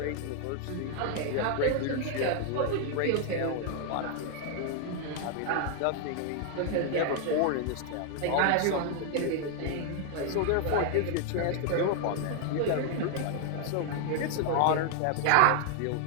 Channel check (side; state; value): both; different; correlation 0.00